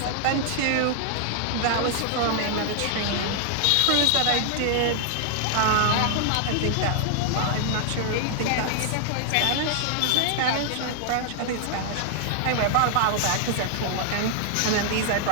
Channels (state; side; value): different; both; correlation 0.00